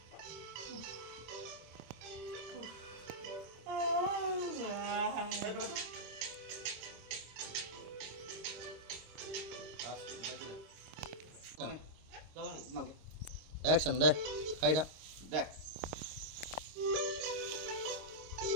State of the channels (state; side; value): late; left; 26 ms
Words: action đây hay đó Dah.